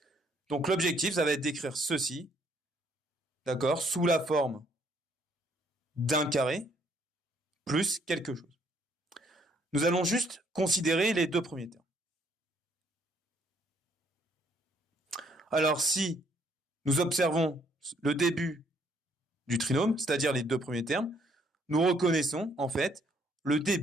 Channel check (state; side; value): normal; both; correlation 0.66